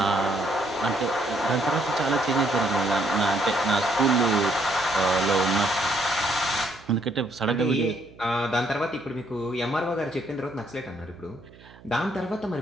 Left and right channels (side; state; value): right; noise; hum, 23 dB below the sound